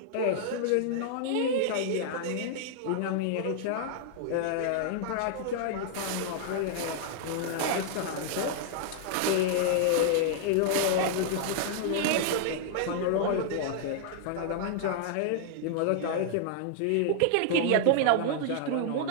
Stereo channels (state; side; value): different; both; correlation -0.01